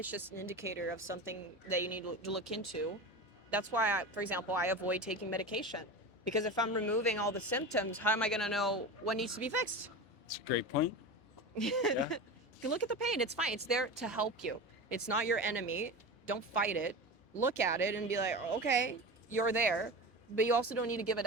just an indicator of something that you need to look into. That's why, for example, I avoid taking medication because if I'm removing all the symptoms, how am I going to know what needs to be fixed? It's a great point. Yeah. Look at the pain. It's fine. It's there to help you. It's not your enemy. Don't fight it. Look at it and be like, okay, you're there, but you also don't need to give it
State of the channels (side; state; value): both; normal; correlation 0.27